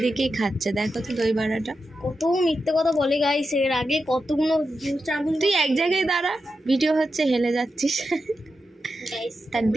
দেখিয়ে খাচ্ছে। দেখো তো দই বড়াটা। কত মিথ্যে কথা বলে গাইস, এর আগে কতগুলো তুই এক জায়গায় দাঁড়া, ভিডিও হচ্ছে, হেলে যাচ্ছিস। তার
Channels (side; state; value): both; normal; correlation 0.89